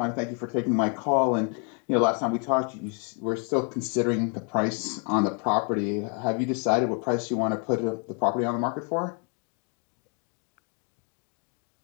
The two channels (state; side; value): quieter; right; 38.9 dB